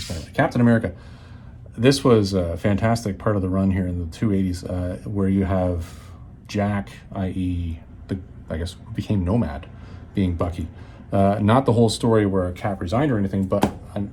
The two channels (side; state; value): both; identical; correlation 1.00